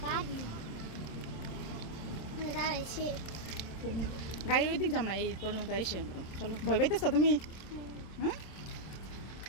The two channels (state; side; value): late; right; 27 ms